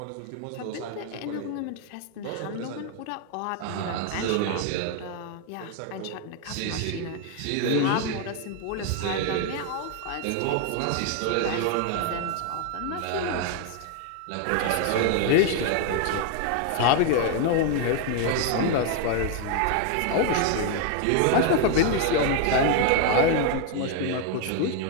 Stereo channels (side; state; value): both; different; correlation 0.00